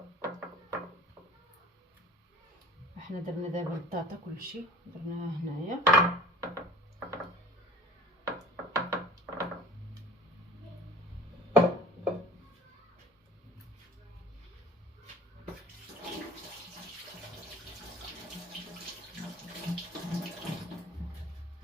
احنا درنا دابا البطاطا كلشي درناها هنايا.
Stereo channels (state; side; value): normal; both; correlation 0.45